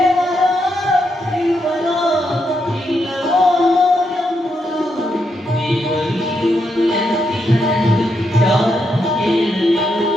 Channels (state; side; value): normal; both; correlation 0.81